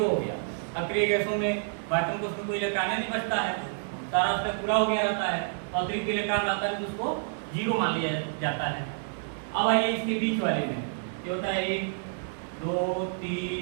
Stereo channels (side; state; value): left; silent; 59 dB below the other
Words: हो गया। अक्रिय गैसों में वैक्यूम को उसमें कोई इलेक्ट्रॉन नहीं बचता है, सारा उसका पूरा हो गया रहता है, अतिरिक्त इलेक्ट्रॉन आता है तो उसको जीरो मान लिया जाता है। अब आइए इसके बीच वाले में ये होता है 1 2